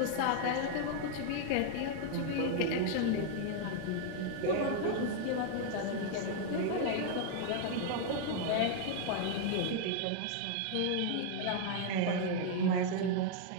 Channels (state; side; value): different; both; correlation 0.00